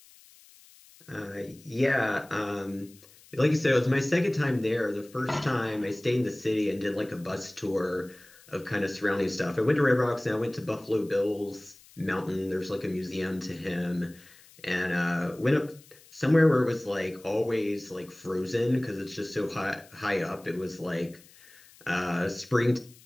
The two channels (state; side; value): noise; left; hiss, 25 dB below the sound